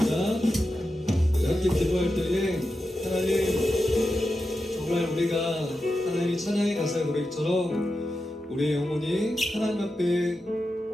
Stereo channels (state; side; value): normal; both; correlation 0.90